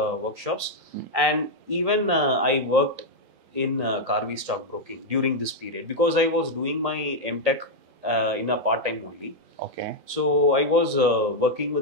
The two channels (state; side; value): late; left; 3.8 ms